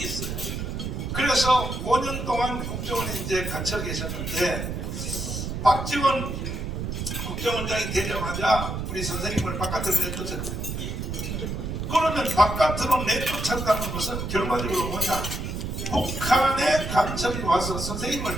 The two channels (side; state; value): right; noise; rumble, 4 dB below the sound